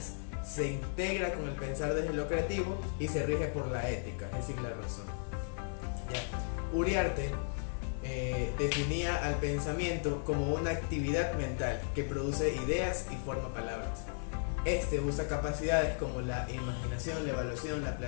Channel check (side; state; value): right; silent; digital silence